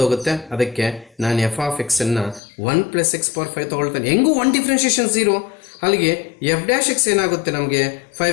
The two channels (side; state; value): right; drops out; at 2.4 s